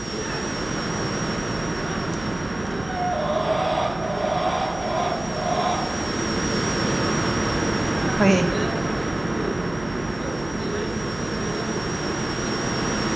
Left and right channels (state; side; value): noise; right; hum, 15 dB below the sound